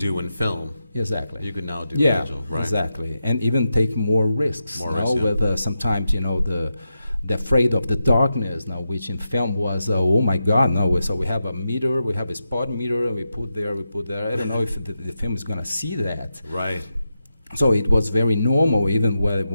in film. Exactly. You could now do in digital, right? Exactly, and even take more risks. More risks, yeah. With sometimes, you know, the afraid of the darkness now, which in film was oh my God, no. So we have a meter, we have a spot meter, and we put there. I don't know if the film is gonna see that. Right. So it was very normal, even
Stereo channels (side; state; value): both; inverted; correlation -0.89